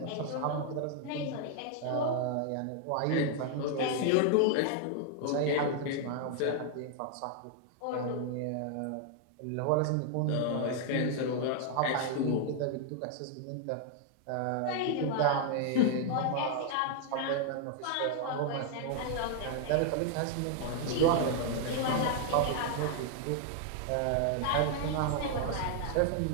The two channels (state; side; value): different; both; correlation 0.00